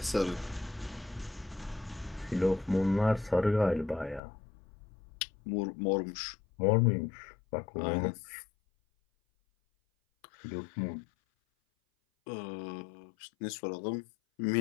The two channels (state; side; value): drops out; right; at 4.2 s